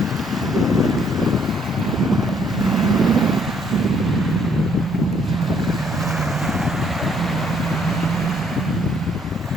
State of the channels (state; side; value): normal; both; correlation 0.66